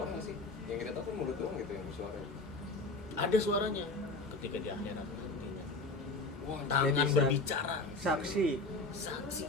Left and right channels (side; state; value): right; quieter; 3.2 dB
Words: nggak sih? Yang kita tahu kan mulut doang gitu yang bersuara. Ada suaranya ketika di akhirat nantinya. Wah, Tangan bisa. berbicara, Saksi. saksi